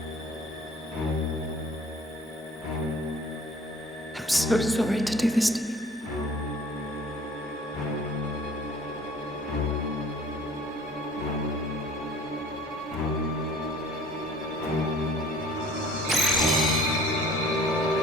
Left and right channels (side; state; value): both; normal; correlation 0.50